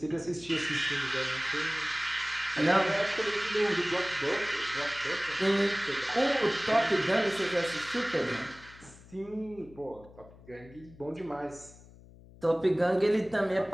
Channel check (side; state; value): left; noise; hum, 22 dB below the sound